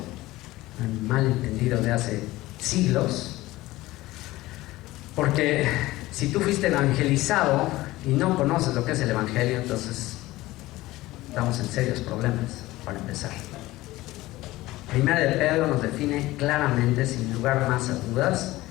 un malentendido de hace siglos, porque si tú fuiste evangelizado y no conoces lo que es el evangelio, entonces estamos en serios problemas. Para empezar, Primera de Pedro nos define claramente, sin lugar más a dudas,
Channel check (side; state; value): right; quieter; 18.0 dB